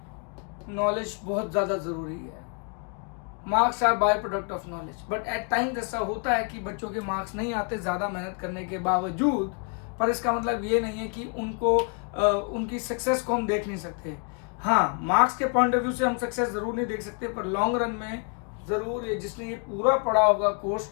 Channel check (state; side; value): quieter; right; 39.0 dB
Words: नॉलेज बहुत ज्यादा जरूरी है। Marks are by product of knowledge, but at times ऐसा होता है कि बच्चों के मार्क्स नहीं आते ज्यादा मेहनत करने के बावजूद, पर इसका मतलब ये नहीं है कि उनको उनकी सक्सेस को हम देख नहीं सकते। हाँ, मार्क्स के पॉइंट ऑफ व्यू से हम सक्सेस जरूर नहीं देख सकते, पर लॉन्ग रन में जरूर जिसने ये पूरा पढ़ा होगा कोर्स